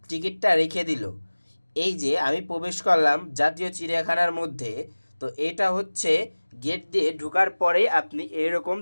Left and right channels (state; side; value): inverted; both; correlation -1.00